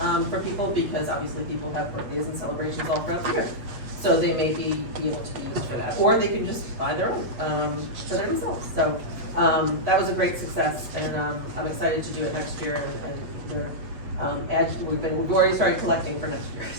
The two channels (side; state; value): left; late; 8.2 ms